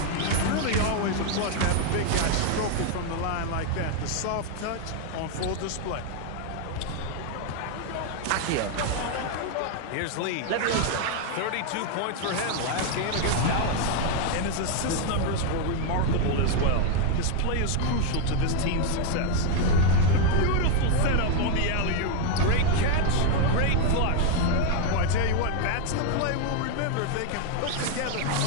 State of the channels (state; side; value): different; both; correlation 0.01